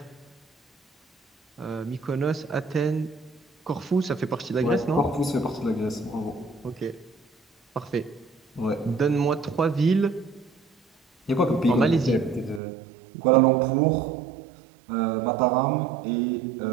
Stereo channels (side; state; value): left; drops out; at 12.6 s